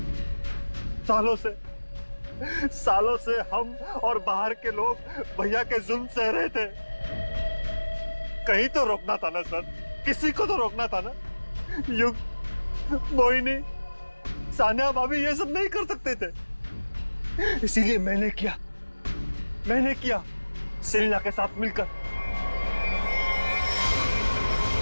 सालों से हम और बाहर के लोग भैया के जुल्म सह रहे थे। कहीं तो रोकना था ना सर, किसी को तो रोकना था ना। युग, मोहिनी, सानिया भाभी ये सब नहीं कर सकते थे, इसीलिए मैंने किया सेलिना के साथ मिलकर।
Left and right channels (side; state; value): both; inverted; correlation -1.00